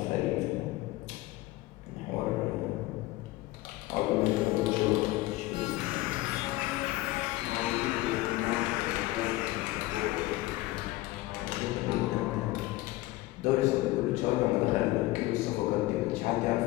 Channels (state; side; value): quieter; right; 18.4 dB